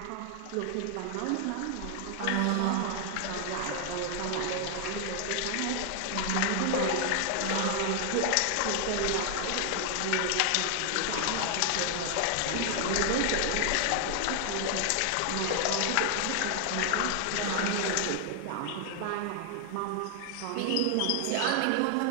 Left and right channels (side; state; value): both; different; correlation 0.00